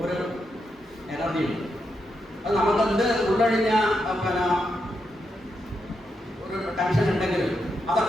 ഒരു എനർജിയുണ്ട്. അത് നമുക്കെന്ത് ഉള്ളഴിഞ്ഞ ഒരു ടെൻഷൻ ഉണ്ടെങ്കിലും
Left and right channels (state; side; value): normal; both; correlation 0.83